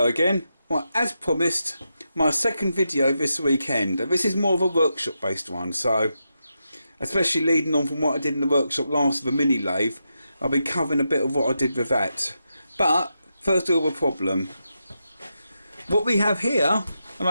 again. Well, as promised, my second video this weekend. This is more of a workshop based one, so especially leading on from what I did in the workshop last with the mini lathe, I'll be covering a bit of what I did with that. But first of all, the problem. What we have here, and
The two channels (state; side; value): inverted; both; correlation -0.86